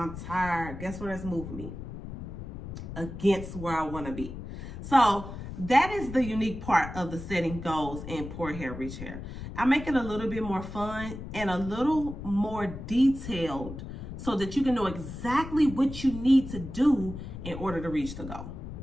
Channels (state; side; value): noise; left; rumble, 10 dB below the sound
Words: tired. Guess where that's moving me? Against where I want to be. So that is the unique part of the setting goals in Poor Hair, Rich Hair. I make it a little bit more fun and a little more detailed, so that you can know exactly what you need to do in order to reach the goal.